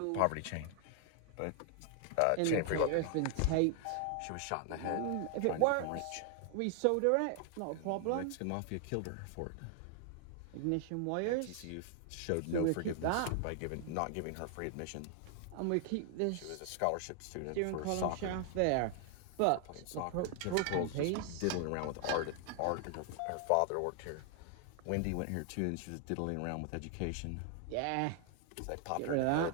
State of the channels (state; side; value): different; both; correlation 0.00